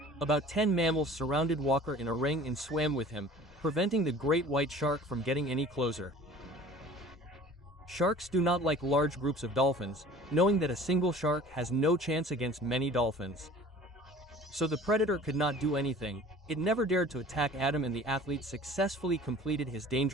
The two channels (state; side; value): normal; both; correlation 0.46